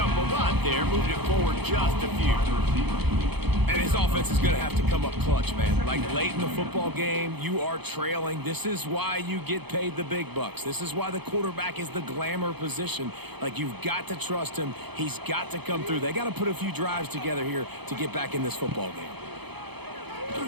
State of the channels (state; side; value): late; left; 0.98 ms